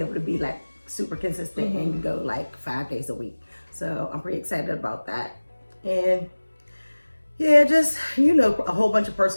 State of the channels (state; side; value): inverted; both; correlation -1.00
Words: able to be like super consistent and go like 5 days a week. So I'm pretty excited about that. And yeah, just, a whole bunch of